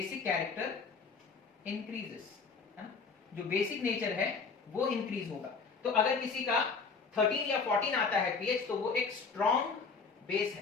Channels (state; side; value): quieter; right; 5.0 dB